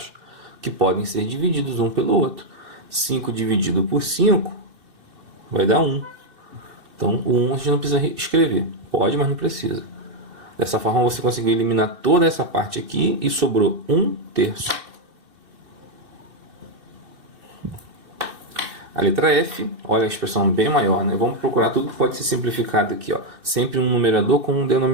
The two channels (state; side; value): late; left; 2.6 ms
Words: que podem ser divididos um pelo outro. 5 dividido por 5 vai dar 1. Então, o 1 a gente não precisa escrever. Pode, mas não precisa. Dessa forma, você conseguiu eliminar toda essa parte aqui e sobrou 1/3. A letra F, olha a expressão bem maior, né? Vamos procurar tudo que pode ser simplificado aqui, ó. Sempre um numerador com um